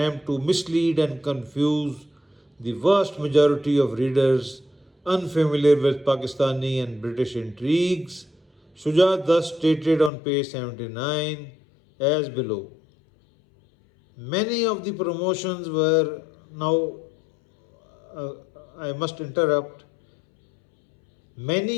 to mislead and confuse the vast majority of readers unfamiliar with Pakistani and British intrigues. Shuja thus stated on page 79 as below. Many of the promotions were now, I must interrupt,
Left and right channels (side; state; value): right; drops out; at 10.1 s